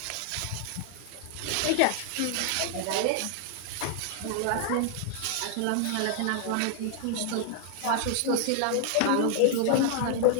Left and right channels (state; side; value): different; both; correlation 0.00